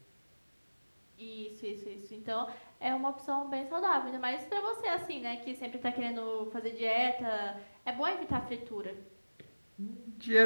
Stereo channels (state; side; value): inverted; both; correlation -1.00